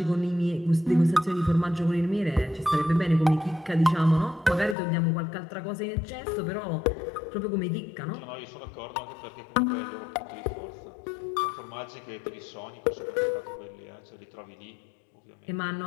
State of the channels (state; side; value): drops out; right; at 4.8 s